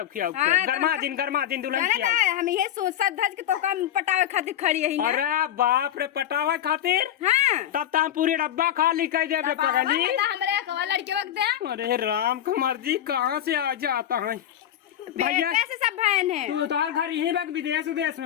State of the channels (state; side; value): quieter; right; 11.3 dB